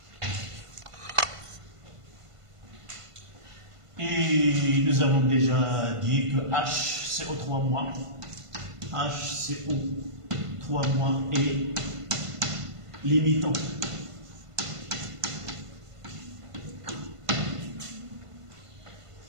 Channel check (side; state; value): left; late; 1.5 ms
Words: Et nous avons déjà dit que HCO3-, HCO3- est limitant.